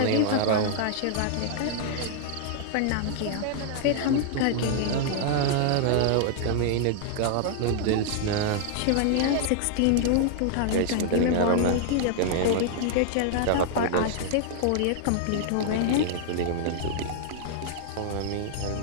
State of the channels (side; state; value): both; different; correlation -0.01